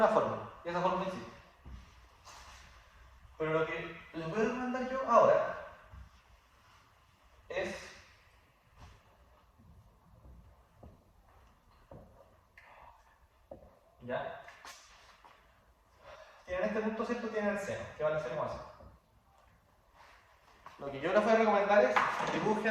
fórmula. Y esa fórmula existe. Pero lo que les voy a recomendar yo ahora es ¿ya? Tienen este punto cierto, tienen el seno, que vale 0,5. Lo que yo les voy a recomendar es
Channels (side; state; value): both; identical; correlation 1.00